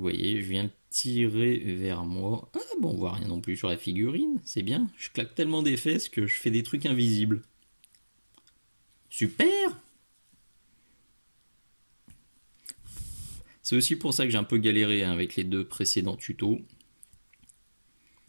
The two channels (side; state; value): both; inverted; correlation -1.00